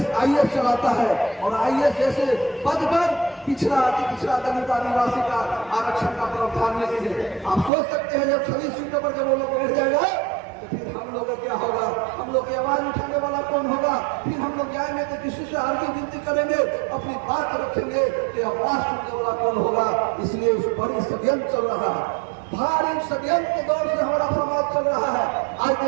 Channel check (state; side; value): drops out; left; at 7.7 s